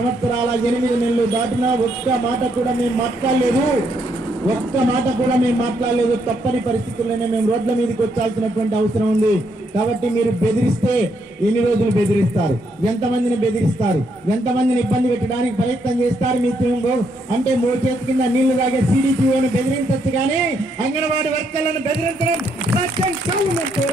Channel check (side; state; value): both; normal; correlation 0.75